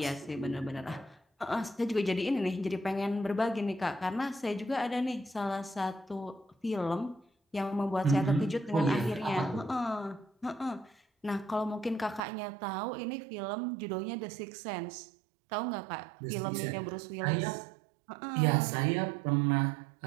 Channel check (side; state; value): left; drops out; at 12.2 s